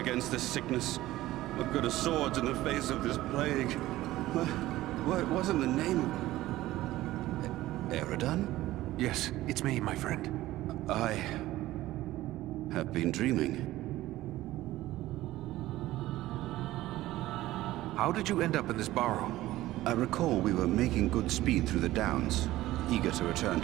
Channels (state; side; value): quieter; left; 16.1 dB